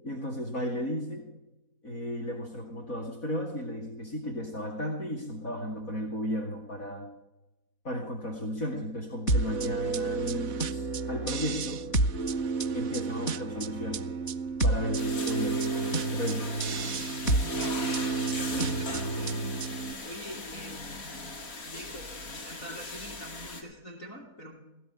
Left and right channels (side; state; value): right; late; 4.1 ms